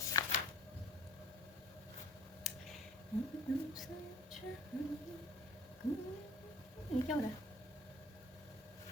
ये क्या हो रहा है?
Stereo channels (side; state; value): both; normal; correlation 0.48